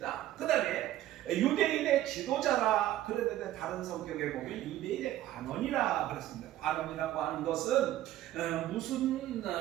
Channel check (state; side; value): quieter; left; 13.8 dB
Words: 그 다음에 유대인의 지도자라, 그런데 다른 성경에 보면 유대인의 관원이라 그랬습니다. 관원이라고 하는 것은 무슨